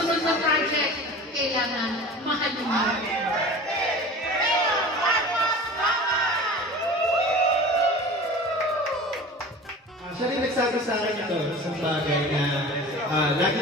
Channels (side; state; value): both; normal; correlation 0.37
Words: na project, kailangan mahalin mo. Siya rin nagsabi sa akin ito, isang bagay na